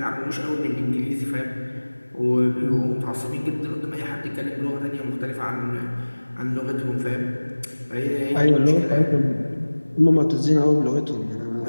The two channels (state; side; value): inverted; both; correlation -1.00